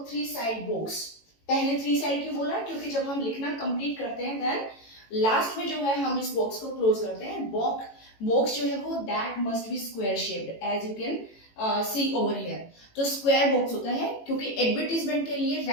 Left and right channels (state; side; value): late; right; 18 ms